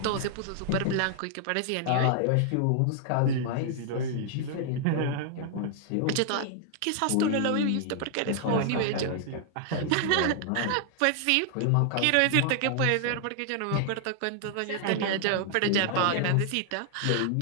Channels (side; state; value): both; different; correlation 0.00